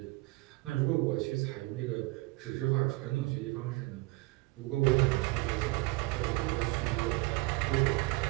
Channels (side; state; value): left; quieter; 23.2 dB